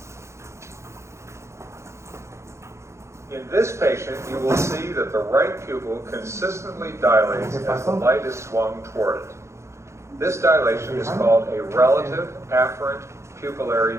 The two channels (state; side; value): late; left; 0.14 ms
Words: In this patient, you will see that the right pupil consistently dilates as the light is swung toward it. This dilation is called a relative afferent